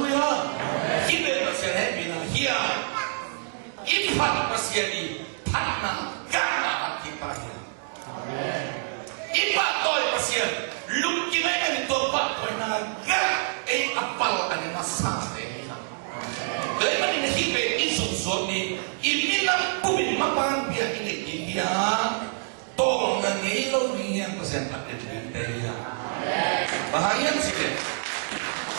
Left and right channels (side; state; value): left; silent; 60 dB below the other